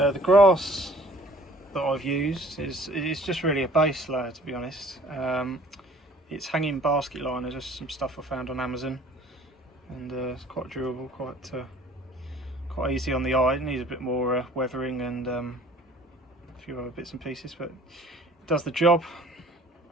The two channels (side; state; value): both; normal; correlation 0.53